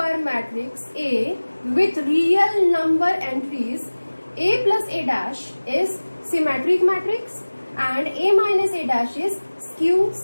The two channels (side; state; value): both; inverted; correlation -1.00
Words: matrix A with real number entries, A plus A dash is symmetric matrix and A minus A dash is skew